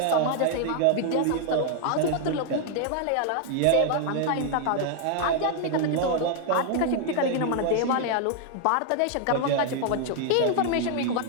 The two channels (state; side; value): different; both; correlation 0.00